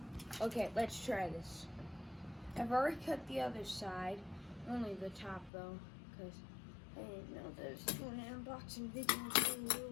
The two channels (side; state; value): right; drops out; at 5.5 s